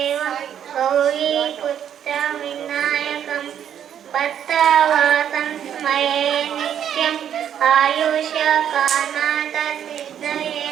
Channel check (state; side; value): quieter; left; 9.4 dB